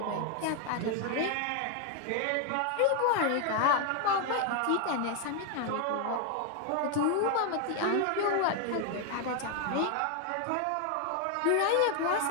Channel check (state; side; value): different; both; correlation 0.01